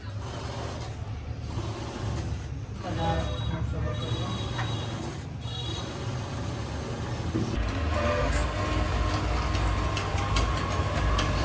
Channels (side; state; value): both; identical; correlation 1.00